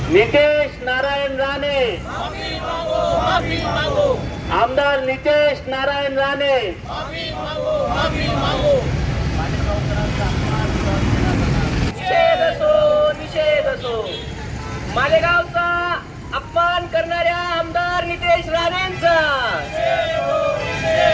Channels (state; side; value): identical; both; correlation 1.00